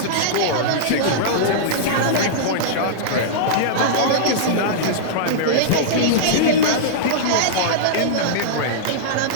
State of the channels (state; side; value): different; both; correlation -0.02